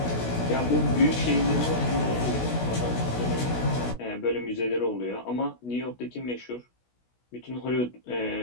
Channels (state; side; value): late; right; 16 ms